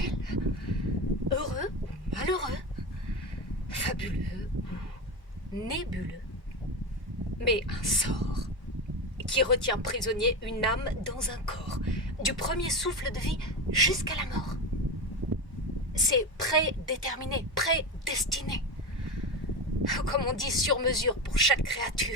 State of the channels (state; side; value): normal; both; correlation 0.20